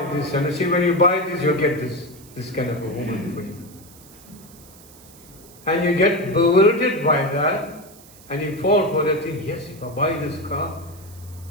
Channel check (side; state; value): right; noise; hiss, 22 dB below the sound